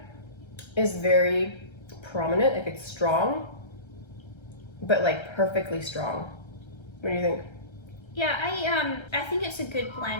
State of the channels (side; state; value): right; late; 1.3 ms